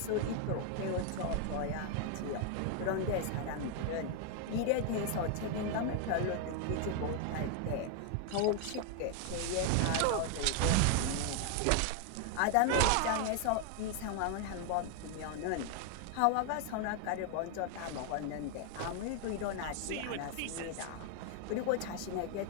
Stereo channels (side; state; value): both; different; correlation 0.00